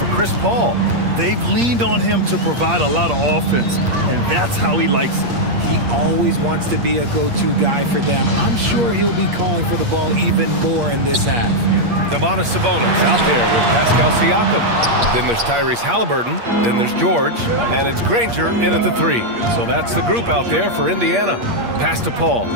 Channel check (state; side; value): late; left; 8.5 ms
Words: Chris Paul. They've leaned on him to provide a lot of offense, and that's how he likes it. He always wants to be a go-to guy for them. I'm sure he'll be calling for the ball even more in this half. Domantas Sabonis out there with Pascal Siakam. Then there's Tyrese Halliburton. Then there's George. And it's Granger in at the 3. So that's the group out there for Indiana. Pass to Paul.